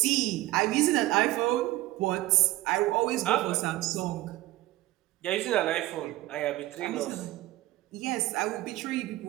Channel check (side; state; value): left; quieter; 17.2 dB